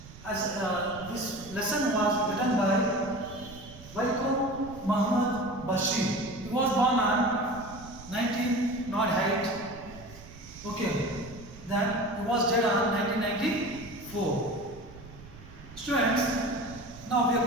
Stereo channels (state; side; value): noise; right; rumble, 17 dB below the sound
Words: as this lesson was written by Vaikom Muhammad Bashir. He was born on 1908. Okay, then he was dead on 1994. Students, now we are